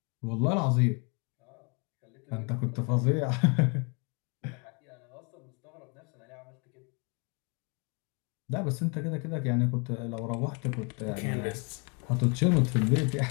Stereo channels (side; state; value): right; quieter; 33.8 dB